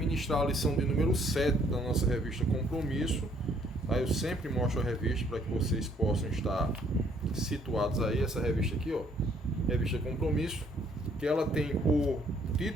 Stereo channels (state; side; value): normal; both; correlation 0.65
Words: a lição de número 7 da nossa revista Compromisso. Aí eu sempre mostro a revista para que vocês possam estar situados aí. Essa revista aqui, ó, revista Compromisso, que ela tem por